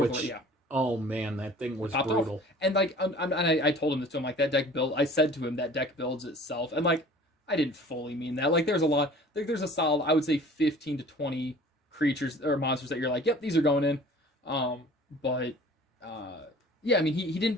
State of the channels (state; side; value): normal; both; correlation 0.47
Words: oh man, that thing was brutal. Off. And like I told him this to him, like, that deck build, I said to him that deck builds itself, and like I didn't fully mean that. Like, there's a solid, I would say 15 to 20 creatures or monsters that you're like, yep, these are going in. But yeah, I mean, he didn't